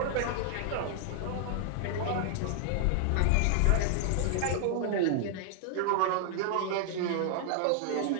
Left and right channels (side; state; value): both; different; correlation 0.00